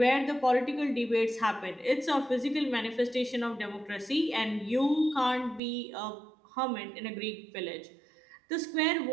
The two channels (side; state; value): left; drops out; at 5.6 s